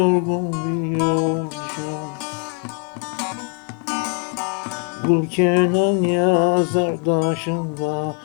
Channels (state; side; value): quieter; right; 37.7 dB